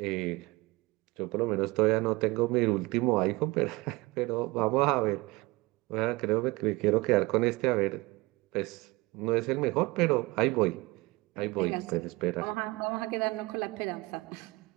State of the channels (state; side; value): quieter; left; 22.9 dB